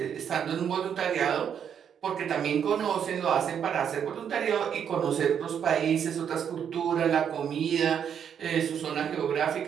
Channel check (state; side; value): quieter; left; 8.2 dB